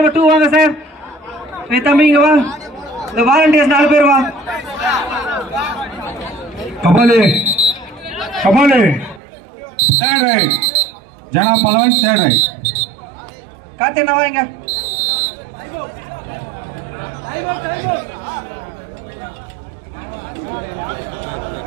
2 வாங்க சார். தம்பிங்க வா. இந்த வாலண்டியர்ஸ் 4 பேர் வா. கபாலு கபாலு தேர்ட் ரைட். ஜனா பலவன் தேர்ட் ரைட். காத்தேனா வாங்க.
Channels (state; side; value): drops out; left; at 9.2 s